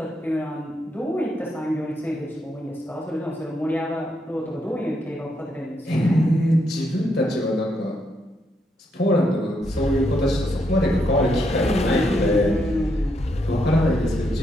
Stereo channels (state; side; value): normal; both; correlation 0.78